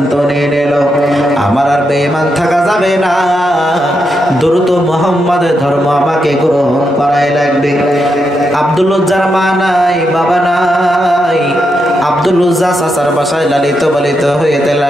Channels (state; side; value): normal; both; correlation 0.83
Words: নিয়ে নিল, আমার আর বেঈমান থাকা যাবে না, দ্রুত মুহাম্মাদের ধর্ম আমাকে গ্রহণ করাই লাগবে। আব্দুল উজ্জার মা নাই, বাবা নাই। আব্দুল উজ্জা চাচার বাসায় লালিত পালিত হইতে